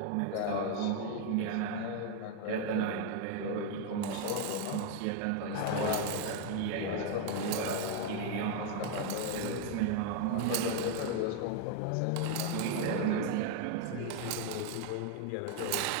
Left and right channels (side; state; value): both; different; correlation 0.01